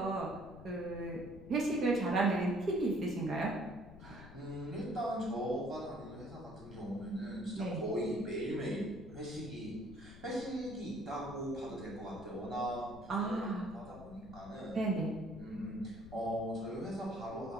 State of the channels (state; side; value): noise; left; rumble, 15 dB below the sound